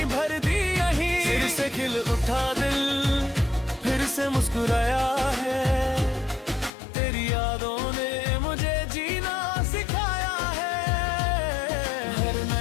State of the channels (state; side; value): drops out; right; at 6.7 s